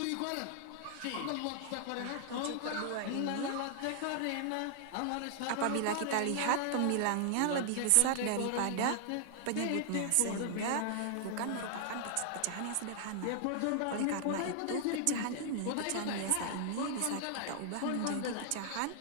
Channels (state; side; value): different; both; correlation -0.01